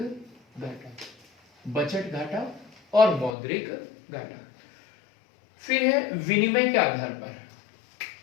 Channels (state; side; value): drops out; right; at 3.3 s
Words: बजट घाटा और मौद्रिक घाटा। फिर है विनिमय के आधार पर।